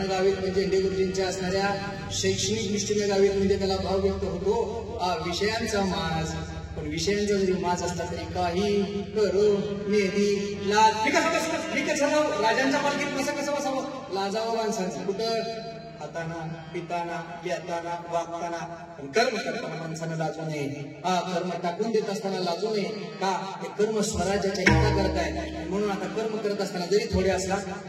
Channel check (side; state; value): both; identical; correlation 1.00